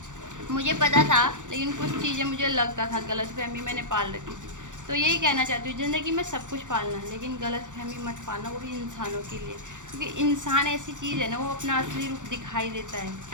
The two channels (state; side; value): late; left; 0.86 ms